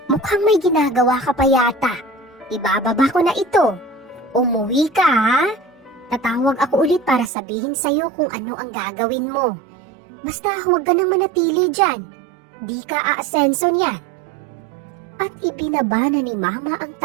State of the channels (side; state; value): left; drops out; at 7.3 s